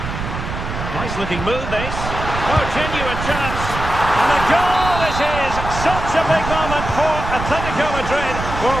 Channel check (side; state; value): right; noise; rumble, 6 dB below the sound